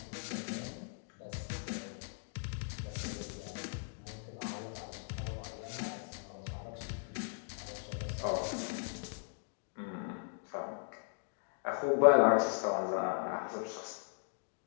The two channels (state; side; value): silent; right; digital silence